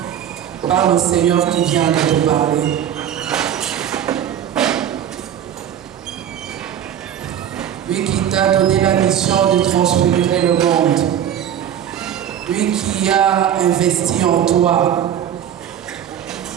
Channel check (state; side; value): quieter; left; 9.8 dB